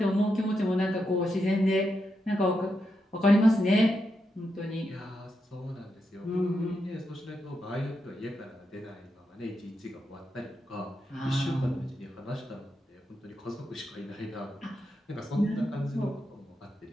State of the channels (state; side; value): normal; both; correlation 0.85